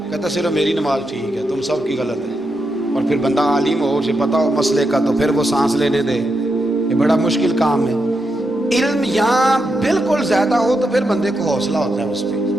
کہتا صرف میری نماز ٹھیک ہے، تم سب کی غلط ہے، اور پھر بندہ عالم ہو، اسے پتہ ہو مسئلے کا، تو پھر وہ سانس لینے دے، یہ بڑا مشکل کام ہے۔ علم یہاں بالکل زیادہ ہو تو پھر بندے کو حوصلہ ہوتا ہے، اس پہ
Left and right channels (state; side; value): normal; both; correlation 0.84